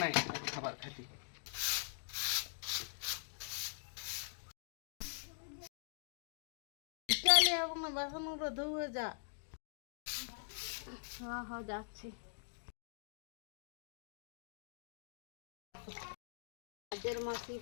নাই খাবার খাইতে। চলে এবং বাসনগুলো ধুয়ে যা। হ্যাঁ হ্যাঁ যাচ্ছি। কাজের মাসি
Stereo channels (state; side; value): silent; right; digital silence